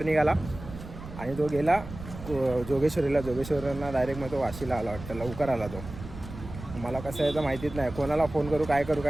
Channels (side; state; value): right; noise; rumble, 12 dB below the sound